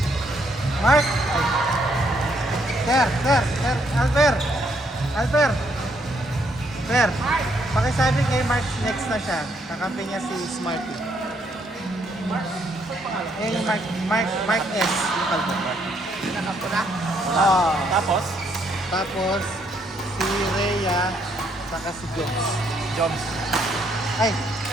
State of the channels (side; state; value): both; normal; correlation 0.72